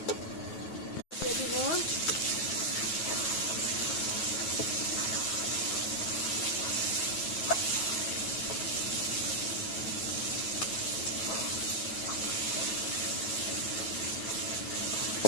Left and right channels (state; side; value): late; right; 9.3 ms